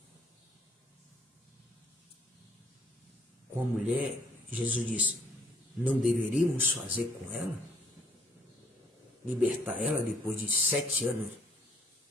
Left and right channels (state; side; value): normal; both; correlation 0.65